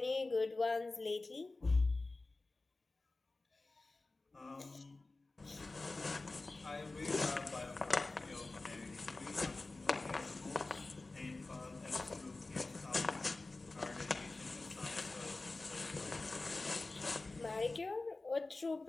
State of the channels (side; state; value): right; quieter; 3.3 dB